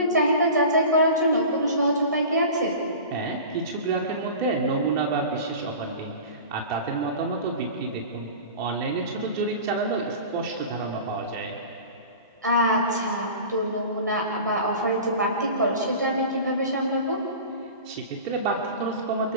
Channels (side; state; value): both; inverted; correlation -0.36